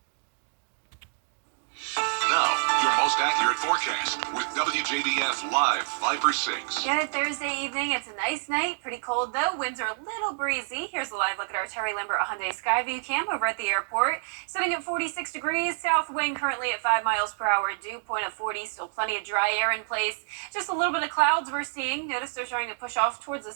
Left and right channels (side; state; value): left; silent; digital silence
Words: Now, your most accurate forecast with WJBF Live Viper 6. Good Thursday evening. It's a nice night. Pretty cold though. Winds are a little breezy. Here's a live look at our Terry Limbert Hyundai Skyview cam over at the airport. Sitting at 46 degrees. South wind currently at 5 miles per hour. Dew point of 40. Still plenty of dry air in place. Just a little bit of clouds we're seeing. Notice they're starting to push off towards the